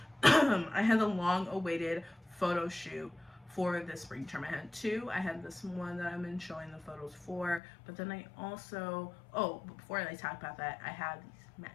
I had the long awaited photo shoot for this spring term. I had two. I had this one that I've been showing the photos for, but then I also, before I talk about that, I had these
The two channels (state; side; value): drops out; right; at 7.6 s